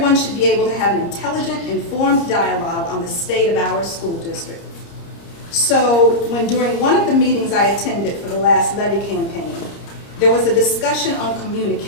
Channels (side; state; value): right; late; 30 ms